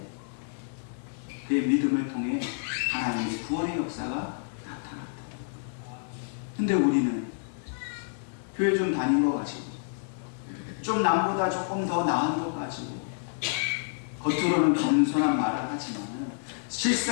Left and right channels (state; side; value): silent; right; digital silence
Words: 그의 믿음을 통해 하나님의 구원의 역사가 나타났다. 근데 우리는 교회 좀 다닌 거 가지고 좀 남보다 조금 더 나은 것 가지고 겉으로는 겸손한 말을 하지만